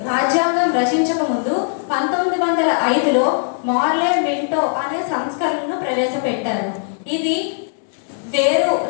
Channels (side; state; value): right; silent; digital silence